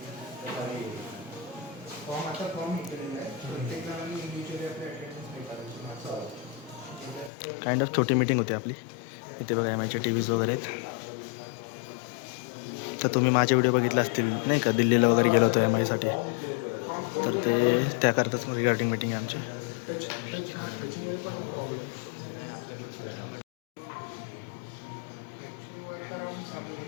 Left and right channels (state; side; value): drops out; right; at 7.3 s